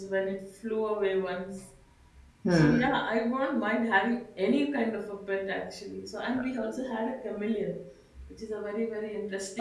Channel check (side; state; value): both; identical; correlation 1.00